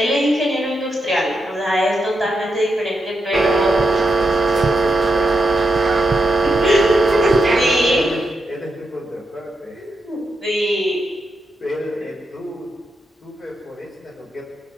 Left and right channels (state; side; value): normal; both; correlation 0.85